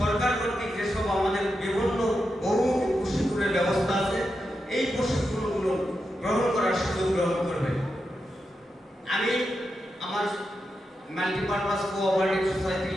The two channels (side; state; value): both; normal; correlation 0.87